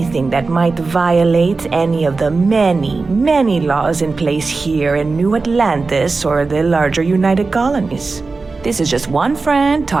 that might violate any of the many, many laws in place here in New Atlantis or the larger United Colonies. This is just one friend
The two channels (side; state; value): left; quieter; 4.0 dB